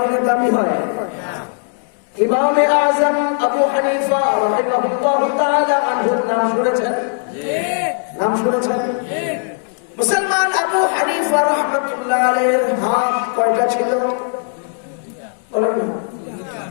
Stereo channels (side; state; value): right; silent; 60 dB below the other